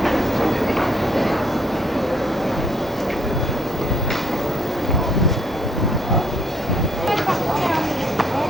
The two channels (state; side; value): normal; both; correlation 0.67